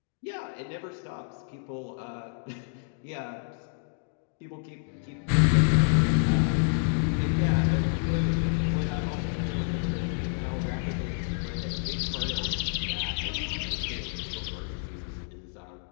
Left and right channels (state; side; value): silent; right; 59 dB below the other